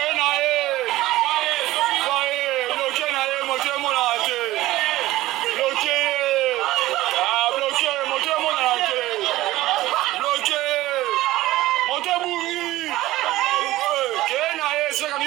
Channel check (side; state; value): left; quieter; 16.7 dB